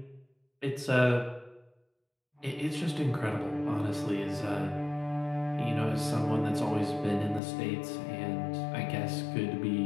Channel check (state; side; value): drops out; right; at 7.4 s